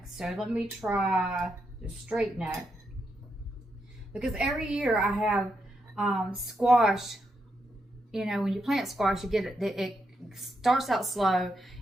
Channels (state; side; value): normal; both; correlation 0.82